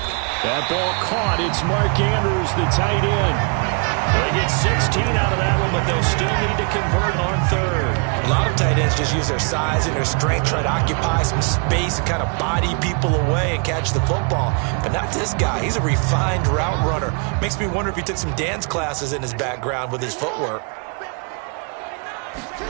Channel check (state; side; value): quieter; left; 37.4 dB